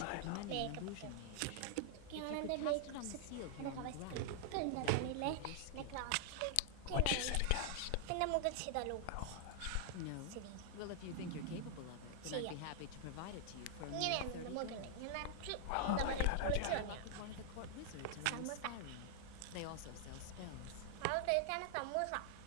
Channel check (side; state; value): both; different; correlation 0.00